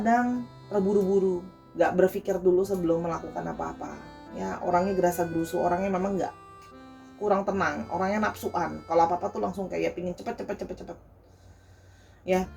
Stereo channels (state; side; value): identical; both; correlation 1.00